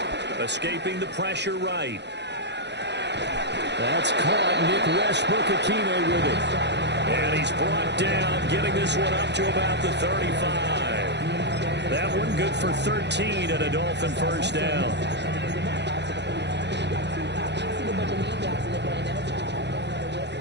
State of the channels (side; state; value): left; late; 0.50 ms